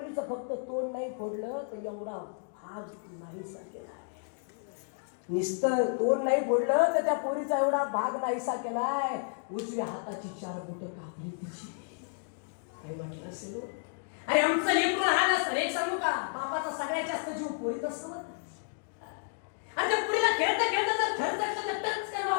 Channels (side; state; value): right; silent; digital silence